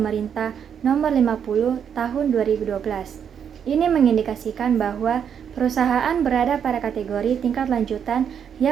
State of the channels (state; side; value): quieter; left; 8.0 dB